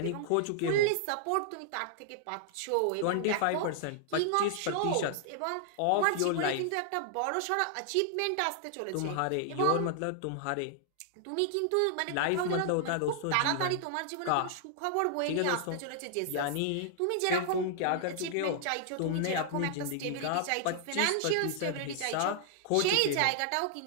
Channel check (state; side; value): different; both; correlation -0.01